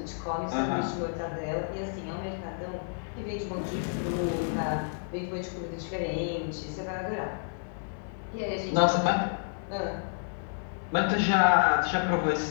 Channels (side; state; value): right; silent; digital silence